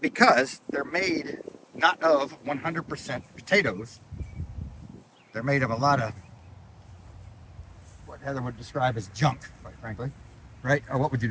because they're made not of 100% potatoes. They're made of a lot of what Heather would describe as junk, quite frankly. Right? Or what would you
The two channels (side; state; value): both; identical; correlation 1.00